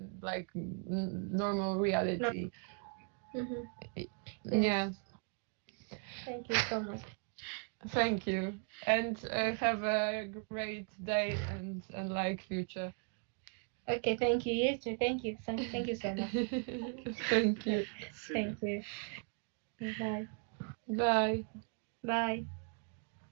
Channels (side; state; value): left; quieter; 39.0 dB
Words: like normal reality. Yeah. Thank you so much. Thank you, and have a great day and like future. Okay, thank you. You too. Thank you. Thank you so much. Thank you. Thank you. Bye. Bye. Bye.